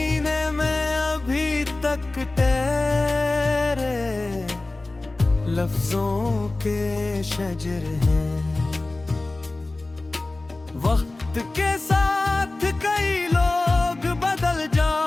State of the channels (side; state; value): right; quieter; 3.0 dB